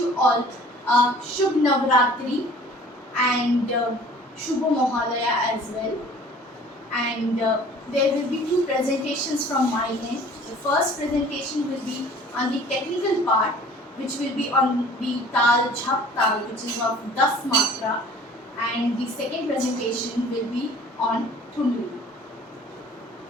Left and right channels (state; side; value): normal; both; correlation 0.50